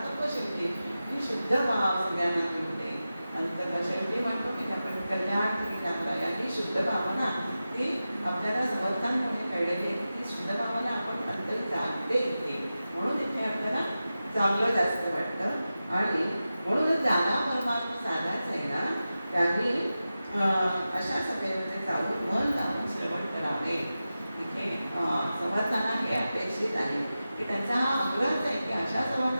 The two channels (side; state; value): both; inverted; correlation -0.93